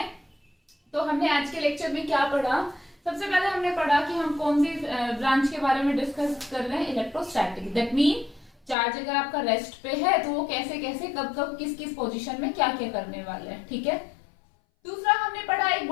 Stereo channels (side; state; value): right; drops out; at 8.8 s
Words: तो हमने आज के लेक्चर में क्या पढ़ा, सबसे पहले हमने पढ़ा कि हम कौन सी ब्रांच के बारे में डिस्कस कर रहे हैं, इलेक्ट्रोस्टैटिक। दैट मीन चार्ज अगर आपका रेस्ट पे है तो वो कैसे कैसे कब कब किस किस पोजीशन में क्या क्या करने वाले हैं, ठीक है। दूसरा हमने पढ़ा एक